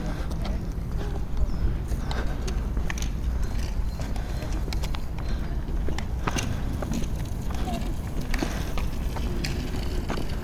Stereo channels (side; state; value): both; identical; correlation 1.00